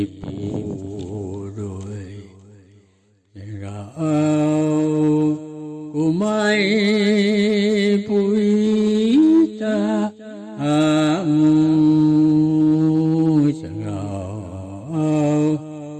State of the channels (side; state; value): both; identical; correlation 1.00